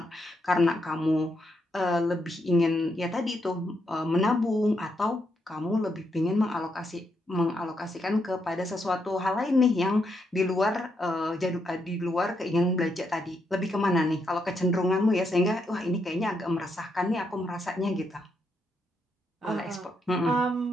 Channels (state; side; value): normal; both; correlation 0.79